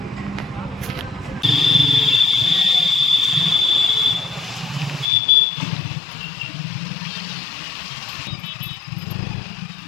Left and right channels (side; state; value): right; drops out; at 5.1 s